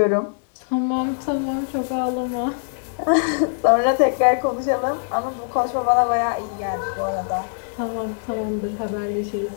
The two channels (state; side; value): silent; right; 64 dB below the other